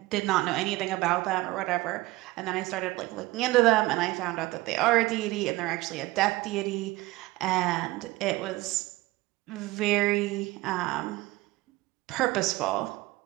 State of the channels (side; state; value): left; quieter; 19.8 dB